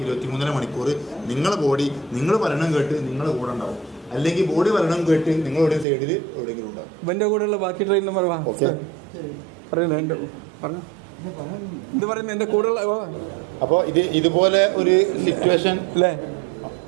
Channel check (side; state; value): left; drops out; at 5.9 s